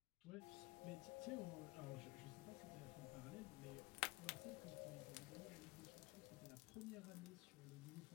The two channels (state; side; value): quieter; right; 22.8 dB